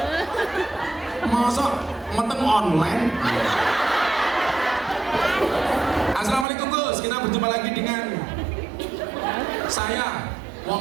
Masa meteng online? Assalamualaikum Gus, kita berjumpa lagi dengan saya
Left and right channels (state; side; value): drops out; left; at 6.5 s